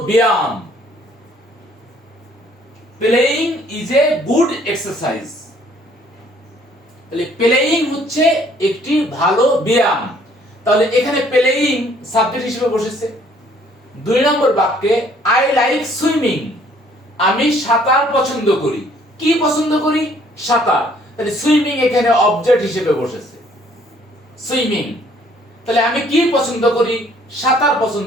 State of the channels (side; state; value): both; normal; correlation 0.61